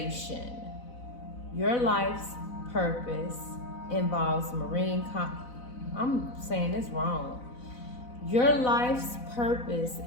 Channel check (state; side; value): late; right; 4.0 ms